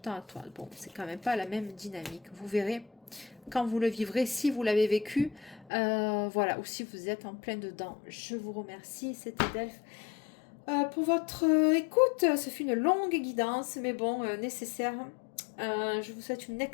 temps à toi. Bon, c'est quand même pas la même dynamique. Vous verrez quand vous le vivrez, si vous l'avez vécu. Voilà. Ou si vous êtes en plein dedans. Je vous remercie. C'était Delphes. Pour votre écoute, ce fut une longue guidance, mais bon, nécessaire. Je vous souhaite une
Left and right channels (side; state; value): right; drops out; at 5.7 s